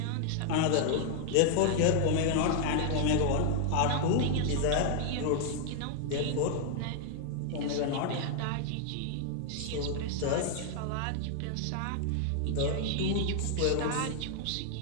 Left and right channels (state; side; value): different; both; correlation 0.00